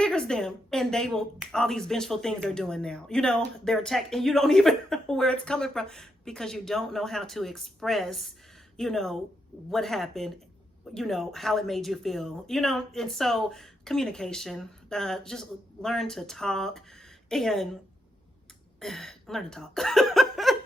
them, and they will, all these vengeful things they're doing now. They're attacked, and you don't even know where it's coming from because you don't know how to express, what happened, how it made you feel, and so communication, just learn to talk and learn to talk.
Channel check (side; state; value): both; normal; correlation 0.82